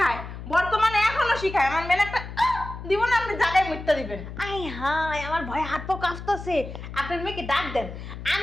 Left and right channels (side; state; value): left; noise; hum, 10 dB below the sound